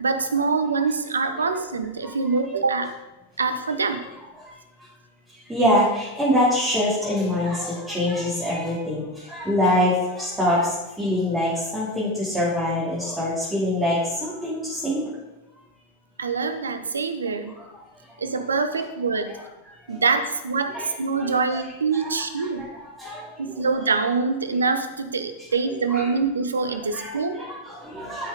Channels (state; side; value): normal; both; correlation -0.12